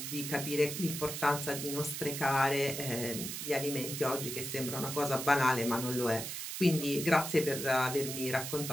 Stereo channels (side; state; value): right; noise; hiss, 6 dB below the sound